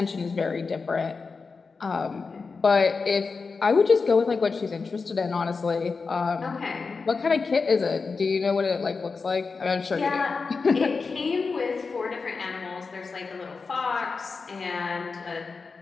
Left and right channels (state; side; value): quieter; right; 4.6 dB